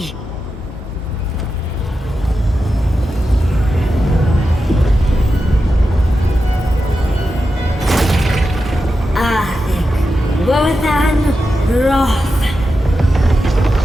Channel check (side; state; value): both; normal; correlation 0.90